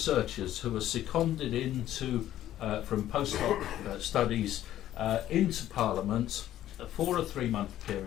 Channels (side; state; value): right; quieter; 12.7 dB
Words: who are seconded into from postdoc studies into Parliament for a 3-month